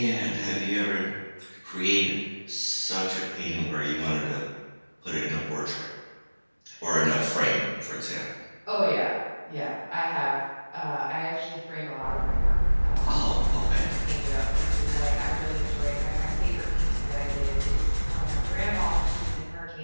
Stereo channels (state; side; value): inverted; both; correlation -1.00